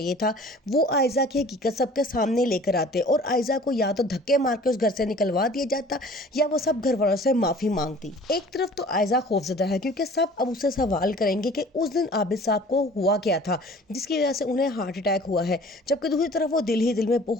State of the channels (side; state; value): both; normal; correlation 0.48